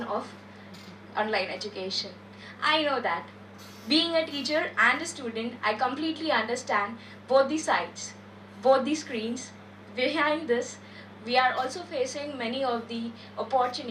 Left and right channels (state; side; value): identical; both; correlation 1.00